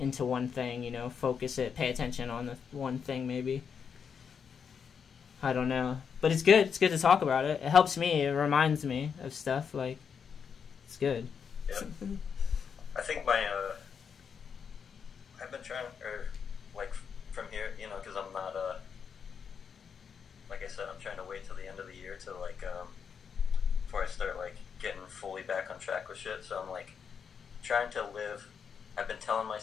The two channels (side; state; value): right; quieter; 6.7 dB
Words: one thing, you know, focus it, pay attention on the one thing maybe. I don't know. But it's good. It's good to talk about it. It helps me. It reminds me of stuff. Like, it's good. Yeah. I think I've been trying, like, from here, you know, because I'm not, like I said, I'm trying to wait till the end of the year to, like, before I start like getting fully back on track with shit. So I'm like trying to live. I've been telling